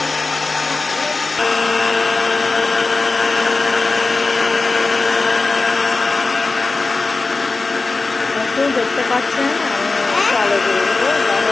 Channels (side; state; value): right; quieter; 3.7 dB